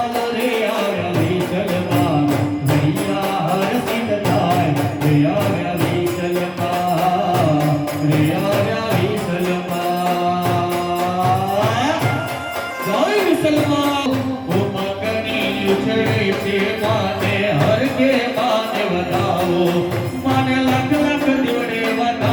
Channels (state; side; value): identical; both; correlation 1.00